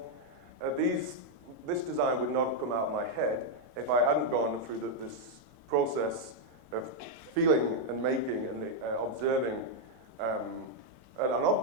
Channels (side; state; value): left; late; 4.6 ms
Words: This design would not have come out of my head if I hadn't gone through this process of feeling and making and observing an